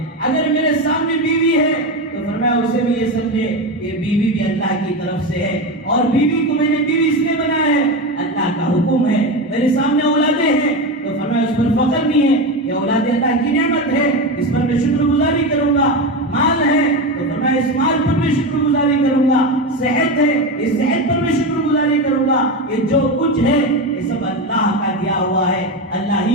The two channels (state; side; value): normal; both; correlation 0.18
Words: اگر میرے سامنے بیوی ہے تو فرمایا اسے بھی یہ سمجھے کہ بیوی بھی اللہ کی طرف سے ہے، اور بیوی کو میں نے بیوی اس لیے بنایا ہے، اللہ کا حکم ہے۔ میرے سامنے اولادیں ہیں تو فرمایا اس پر فخر نہیں ہے، یہ اولاد اللہ کی نعمت ہے، اس پر میں شکر گزاری کروں گا۔ مال ہے تو فرمایا اس مال پر میں شکر گزاری کروں گا۔ صحت ہے، اس صحت پر میں شکر گزاری کروں گا۔ یہ جو کچھ ہے یہ سب اللہ کا دیا ہوا ہے، اللہ